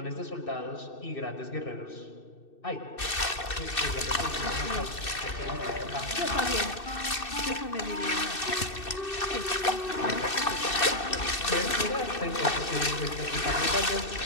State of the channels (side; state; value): right; late; 2.6 ms